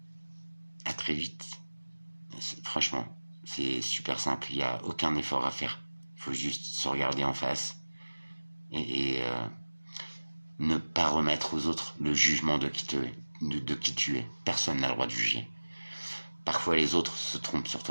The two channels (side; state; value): both; inverted; correlation -1.00